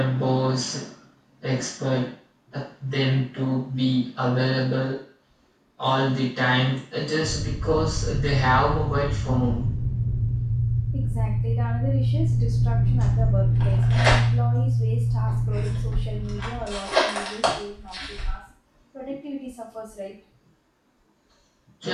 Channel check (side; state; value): both; identical; correlation 1.00